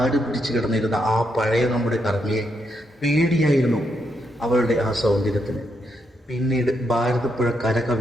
പിടിച്ചു കിടന്നിരുന്ന ആ പഴയ നമ്മുടെ കർമ്മയെ പേടിയായിരുന്നു അവളുടെ ആ സൗന്ദര്യത്തിന്. പിന്നീട് ഭാരതപ്പുഴ കര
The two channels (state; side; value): normal; both; correlation 0.80